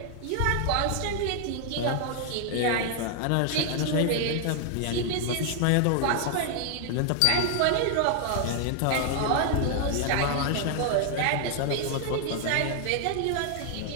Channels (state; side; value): different; both; correlation 0.00